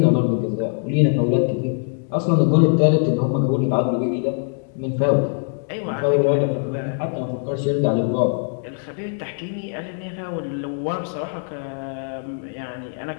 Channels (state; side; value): silent; right; 63 dB below the other